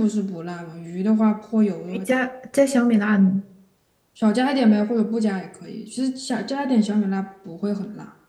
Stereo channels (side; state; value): both; identical; correlation 1.00